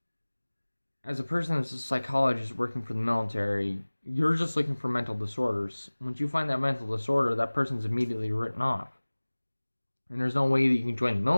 a person that's a psychologist working for the military, you're just looking for mental disorders. Once you find that mental disorder, that person's immediately written off. And there's no way that you can join the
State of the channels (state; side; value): inverted; both; correlation -1.00